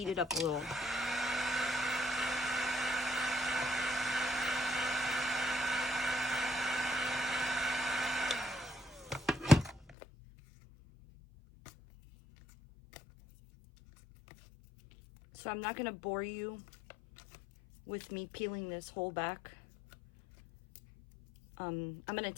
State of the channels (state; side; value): drops out; right; at 10.0 s